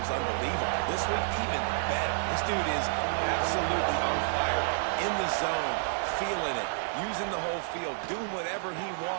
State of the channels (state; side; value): silent; left; digital silence